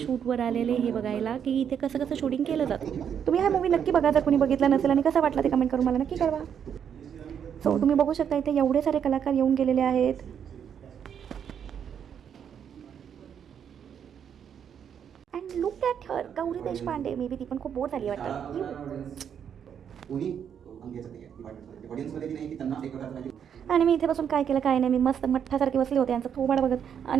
शूटवर आलेले हे बघायला की इथे कसं कसं शूटिंग केलं जातं. तुम्ही हा मूवी नक्की बघा जर कोणी बघितला नसेल, आणि कसा वाटला ते कमेंट करून मला नक्की कळवा. सो तुम्ही बघू शकता इथे एवढे सारे कलाकार येऊन गेलेले आहेत. And look at her, Gauri Deshpande. May be ती पण खूप बोर झाली वाटतं. आणि मी इथे बसून काय केलं काय नाही, मी मस्त मठ्ठासारखे बसले होते यांचं थोबाड बघत,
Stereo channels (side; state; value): left; quieter; 8.2 dB